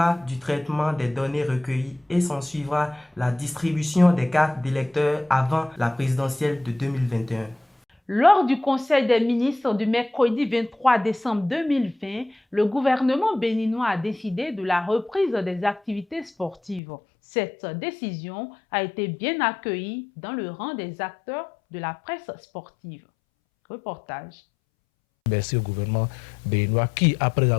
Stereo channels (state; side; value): drops out; right; at 16.8 s